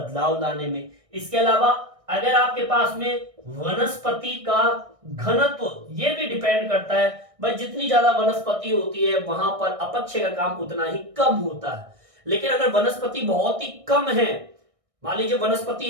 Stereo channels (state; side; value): late; left; 1.6 ms